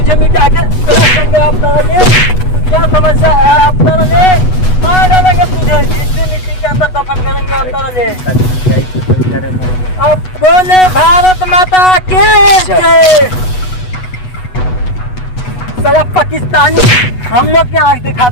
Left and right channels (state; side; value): late; right; 8.1 ms